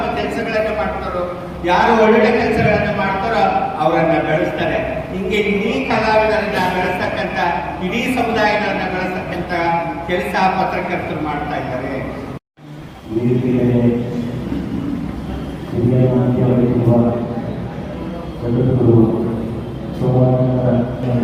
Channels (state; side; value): identical; both; correlation 1.00